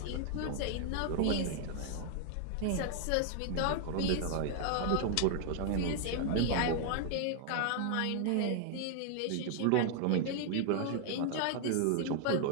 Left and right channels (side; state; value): both; different; correlation 0.00